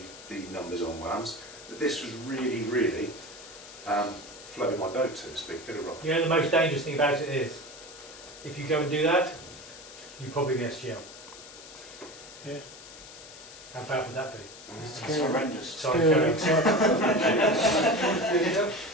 numbers on WAMs, but this was really, really floated my boat, so to speak. Good or wrong. You know the most dangerous thing about it is, if you go and do that, you probably miss jail. Yeah. How bad would that be? It's horrendous. Sorry, Kerry.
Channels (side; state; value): left; noise; hiss, 17 dB below the sound